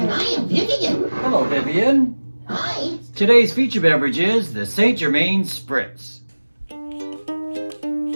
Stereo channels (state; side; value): inverted; both; correlation -1.00